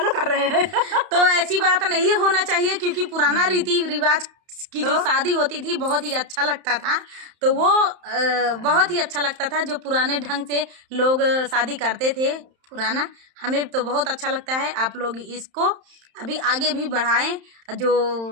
कर रहे हैं। तो ऐसी बात नहीं होना चाहिए, क्योंकि पुराना रीति रिवाज की जो शादी होती थी बहुत ही अच्छा लगता था। तो वो बहुत ही अच्छा लगता था जो पुराने ढंग से लोग शादी करते थे पुराना। हमें तो बहुत अच्छा लगता है। आप लोग इसको अभी आगे भी बढ़ाएं। जो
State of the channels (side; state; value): left; late; 31 ms